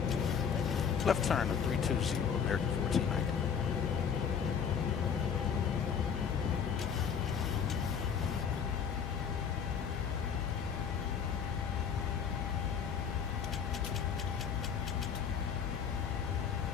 Left turn to 320, American 1490.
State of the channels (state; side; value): quieter; right; 7.1 dB